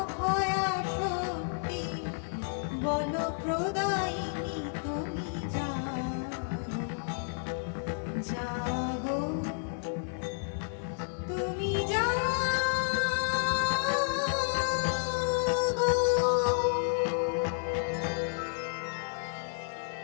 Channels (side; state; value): right; silent; 57 dB below the other